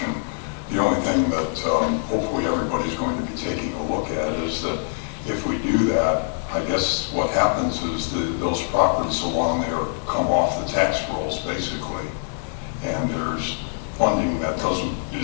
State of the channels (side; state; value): right; silent; 63 dB below the other